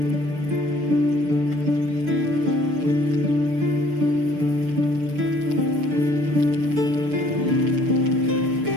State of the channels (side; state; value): left; late; 6.6 ms